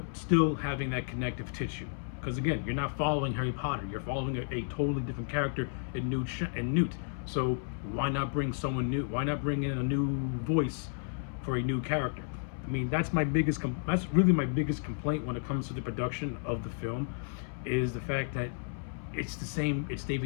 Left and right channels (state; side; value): silent; right; 56 dB below the other